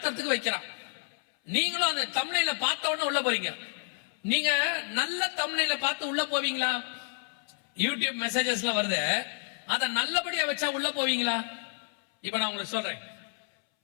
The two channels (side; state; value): right; silent; 58 dB below the other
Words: வைக்கிறான். நீங்களும் அந்த தம்ப்லைனை பார்த்த உடனே உள்ள போறீங்க. நீங்க நல்ல தம்ப்லைனை பார்த்து உள்ள போவீங்களா? யூடியூப் மெசேஜஸ்லாம் வருது, அதை நல்லபடியா வச்சா உள்ள போவீங்களா? இப்ப நான் உங்களுக்கு சொல்றேன்,